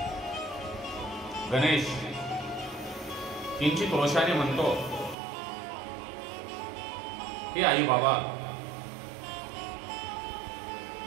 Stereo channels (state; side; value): drops out; left; at 5.2 s